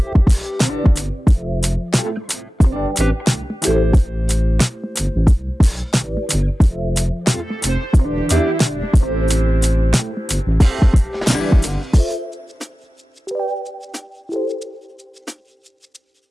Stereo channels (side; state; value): both; normal; correlation 0.95